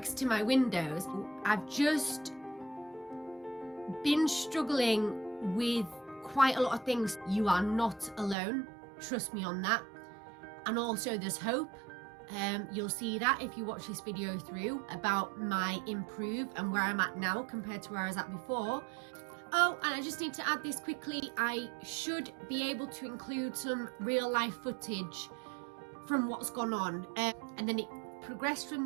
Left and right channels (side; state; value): left; drops out; at 8.3 s